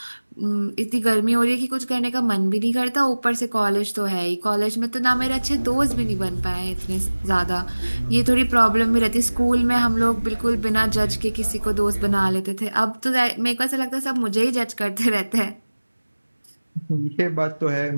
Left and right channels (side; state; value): both; inverted; correlation -1.00